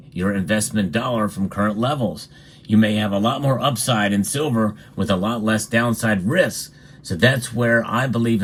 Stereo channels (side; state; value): both; identical; correlation 1.00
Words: your investment dollar from current levels. You may have a lot more upside in silver with a lot less downside risk. So that's where I believe